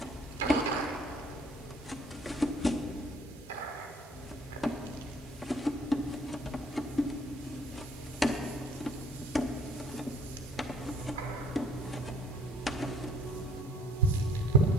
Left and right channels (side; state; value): both; normal; correlation 0.58